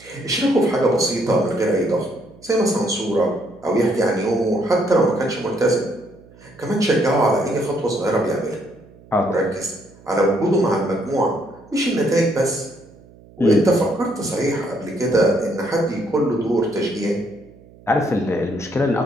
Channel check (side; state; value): right; noise; hum, 24 dB below the sound